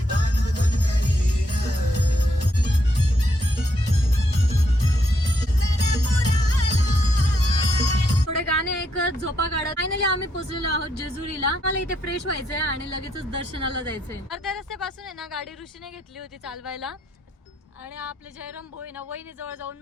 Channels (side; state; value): both; normal; correlation 0.76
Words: थोडे गाणे ऐकत झोपा काढत फायनली आम्ही पोहोचलेलो आहोत जेजुरीला. मला इथे फ्रेश व्हायचंय आणि लगेचच दर्शनाला जायचंय. अर्ध्या रस्त्यापासून आहे ना गाडी ऋषीने घेतली होती चालवायला आणि आपले जयराम भाऊ आहे ना वहिनी जवळ